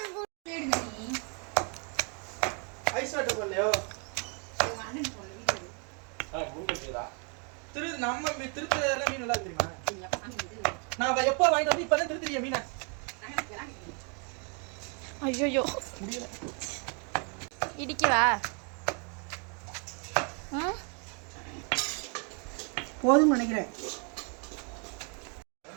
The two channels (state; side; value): quieter; left; 37.4 dB